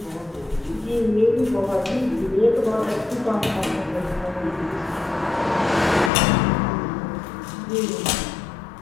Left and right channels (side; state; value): right; drops out; at 6.1 s